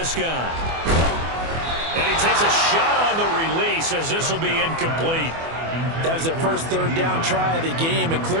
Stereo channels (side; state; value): left; late; 24 ms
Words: And he takes a shot on the release as this will be incomplete. That was their first 3rd down try of the game, and